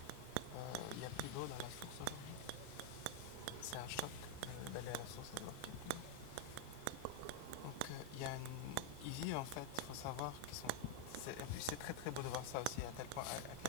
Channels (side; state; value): both; different; correlation 0.00